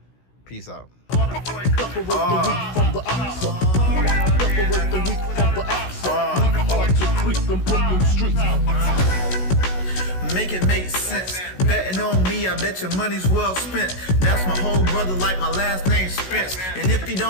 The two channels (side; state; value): right; late; 16 ms